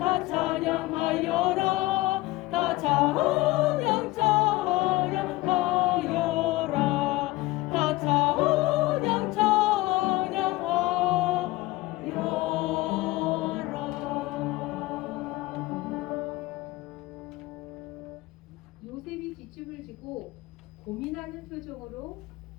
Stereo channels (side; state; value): right; quieter; 19.3 dB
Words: 찬양하여라 다 찬양 찬양하여라 다 찬양 요셉이 뒷집을 지고 고민하는 표정으로